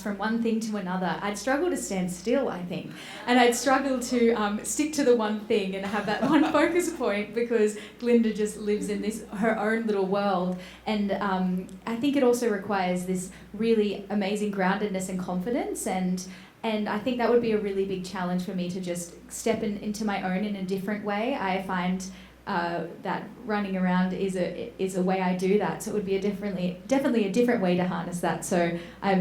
from one thing to another. I'd struggle to stand still, I think. And I'd struggle to stick to the one thing and have that one focus point because Glinda just lives in her own little world. And I think it also requires this really amazing groundedness and confidence. And I think that would be a really big challenge for me to just step into my own in a different way. I find that running around is a way I do that. So it would be definitely a different way to harness that. So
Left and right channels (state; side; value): identical; both; correlation 1.00